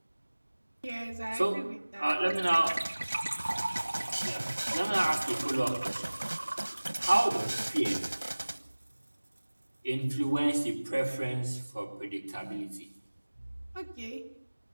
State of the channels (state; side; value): inverted; both; correlation -1.00